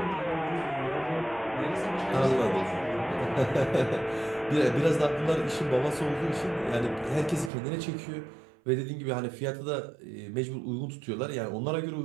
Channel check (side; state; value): left; drops out; at 7.5 s